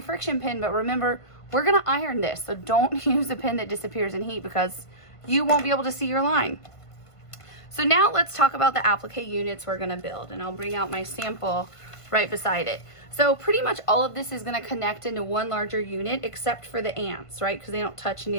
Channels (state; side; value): late; right; 1.5 ms